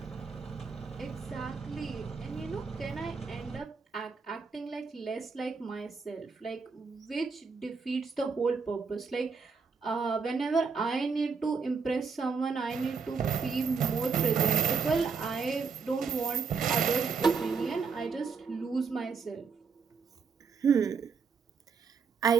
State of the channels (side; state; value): left; quieter; 5.2 dB